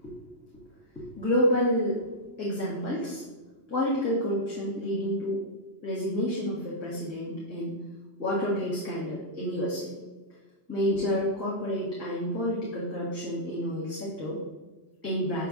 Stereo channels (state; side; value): late; left; 2.9 ms